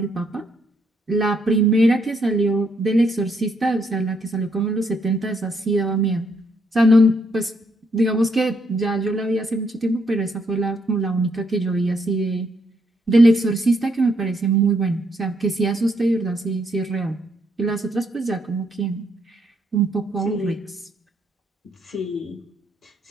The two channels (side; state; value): both; normal; correlation 0.74